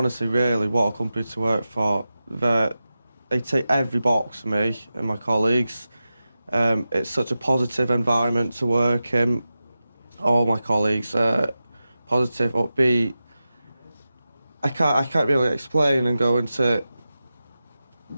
really, what a company to work for. They take every box for me and my colleagues. It's such a positive environment to work in. All my colleagues are positive, upbeat. I can't really explain and go into.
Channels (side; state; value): both; inverted; correlation -0.93